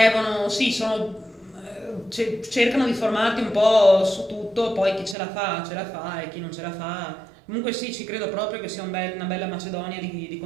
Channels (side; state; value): left; drops out; at 5.2 s